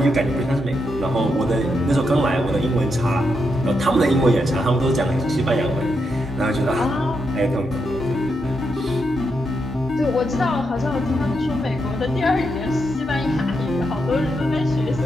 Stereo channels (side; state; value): both; normal; correlation 0.82